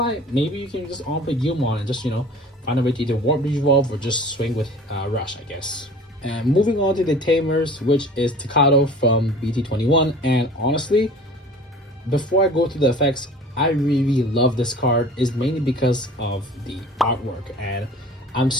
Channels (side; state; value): both; normal; correlation 0.43